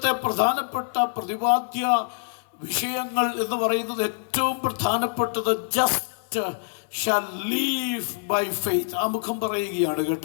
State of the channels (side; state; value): right; silent; digital silence